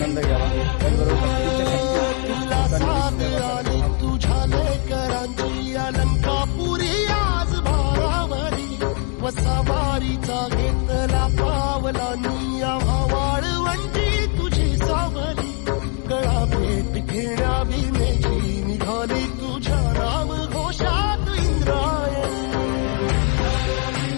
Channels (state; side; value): quieter; right; 39.0 dB